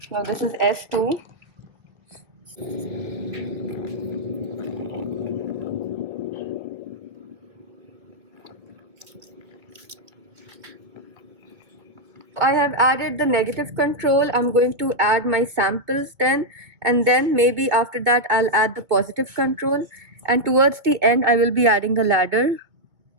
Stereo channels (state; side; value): late; left; 2.2 ms